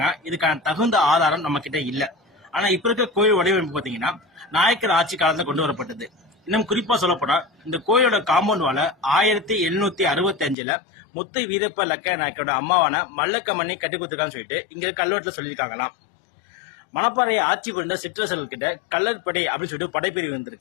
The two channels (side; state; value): right; drops out; at 10.6 s